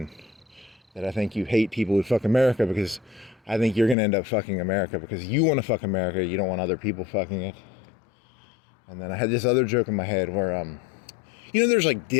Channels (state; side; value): drops out; right; at 4.0 s